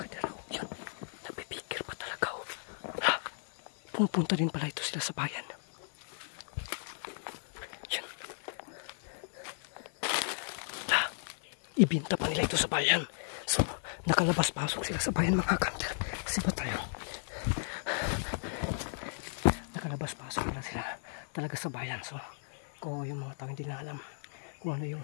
Pupunta din pala ito sila sa bayan. Yan. Ibinta pa nila ito sa bayan. So, nakalabas-pasok sila sa bayan mga hunter. Kasi ba tayo? Nakalabas-pasok na sila talaga sa bayan. So, kung yung mga tao hindi na alam kung ano yung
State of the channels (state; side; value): silent; right; digital silence